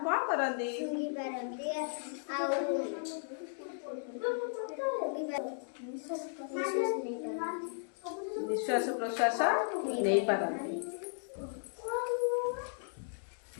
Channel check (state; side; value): silent; right; digital silence